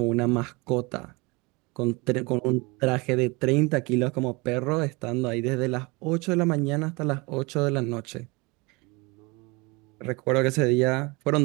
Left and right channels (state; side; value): quieter; left; 26.4 dB